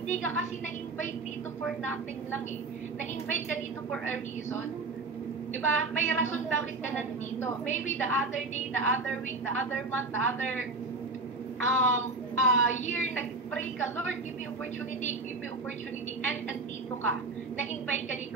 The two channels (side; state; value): left; quieter; 3.5 dB